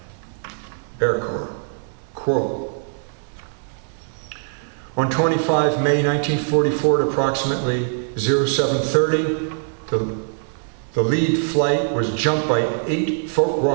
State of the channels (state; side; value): silent; left; 57 dB below the other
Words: Air Corps, quote, on 25 May 1944 at approximately 0730, the lead flight was jumped by 8